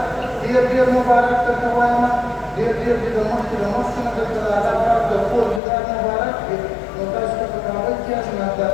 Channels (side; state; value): right; drops out; at 5.6 s